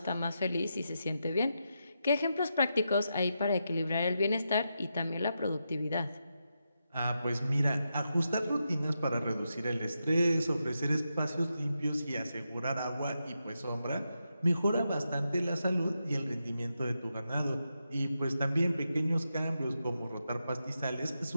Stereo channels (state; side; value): inverted; both; correlation -0.86